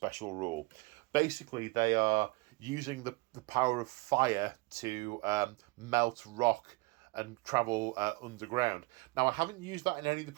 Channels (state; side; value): quieter; left; 24.6 dB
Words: rule. Basically they are using the power of fire to melt rock and travel underground. Now I haven't used that in any of the